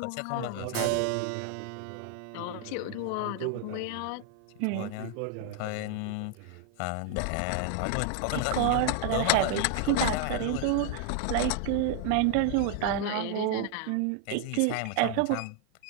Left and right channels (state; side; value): different; both; correlation 0.00